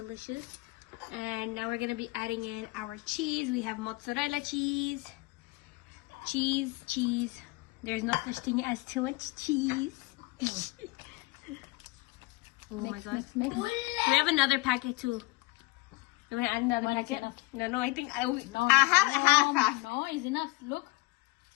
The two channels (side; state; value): right; quieter; 22.8 dB